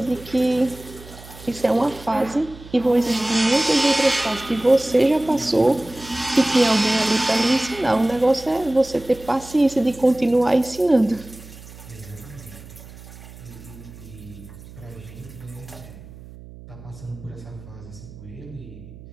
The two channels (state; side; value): noise; right; hum, 18 dB below the sound